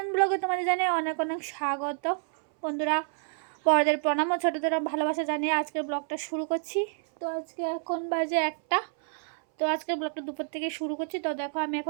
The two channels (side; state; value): left; silent; 59 dB below the other